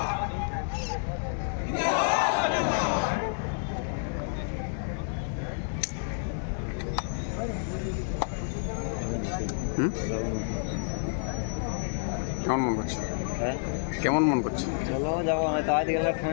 কেমন মন করছে? হ্যাঁ, কেমন মন করছে? চলো যাবো, হয়তো আজ গেলে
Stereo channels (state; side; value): silent; right; digital silence